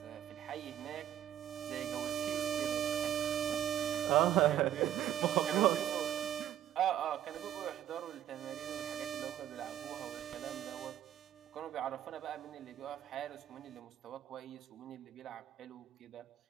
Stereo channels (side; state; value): left; quieter; 11.3 dB